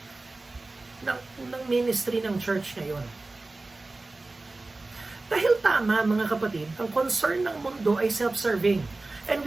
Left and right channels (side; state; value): left; quieter; 3.2 dB